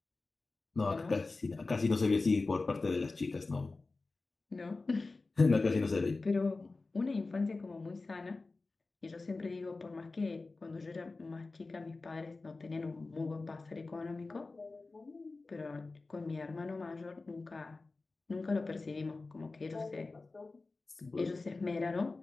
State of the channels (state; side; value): quieter; right; 3.6 dB